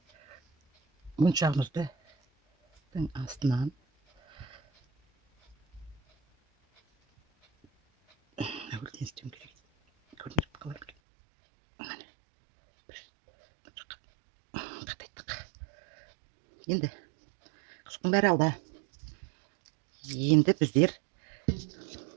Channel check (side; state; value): left; drops out; at 10.9 s